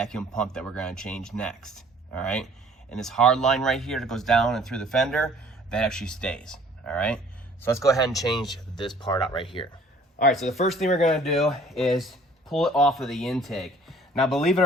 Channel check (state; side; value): normal; both; correlation 0.54